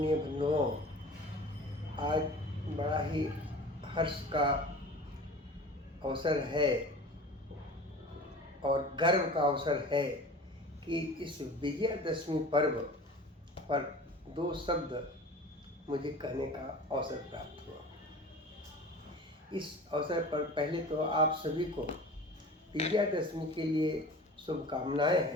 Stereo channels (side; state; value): both; normal; correlation 0.39